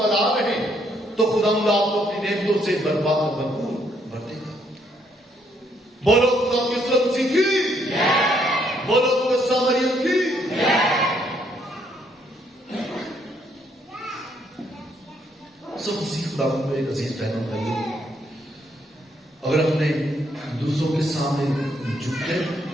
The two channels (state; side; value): normal; both; correlation 0.71